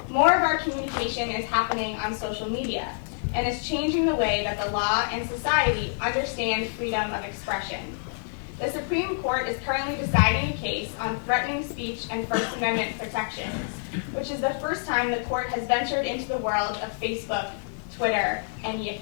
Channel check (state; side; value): silent; right; digital silence